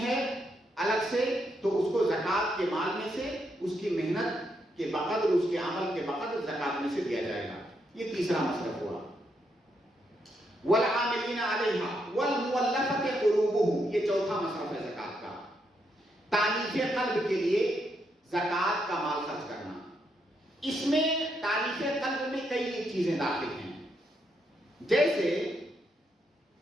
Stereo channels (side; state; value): both; normal; correlation 0.79